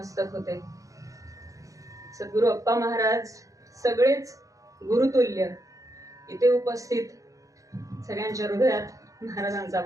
होते। सद्गुरु अप्पा महाराज सगळेच गुरुतुल्य इथे उपस्थित सगळ्यांच्या हृदयात महाराजांचा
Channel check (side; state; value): left; late; 0.16 ms